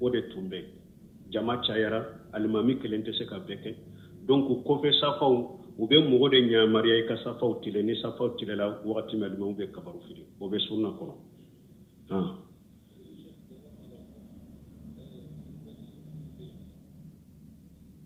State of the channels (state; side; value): identical; both; correlation 1.00